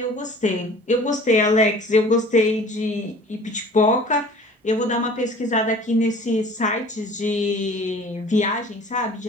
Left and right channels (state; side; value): normal; both; correlation 0.47